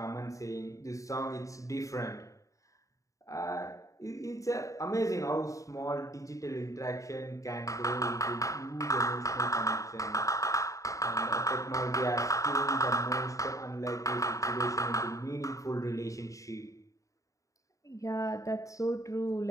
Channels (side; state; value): right; late; 0.16 ms